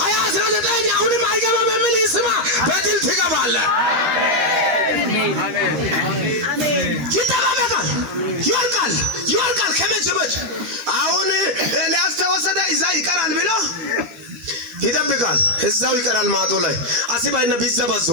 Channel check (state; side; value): late; left; 13 ms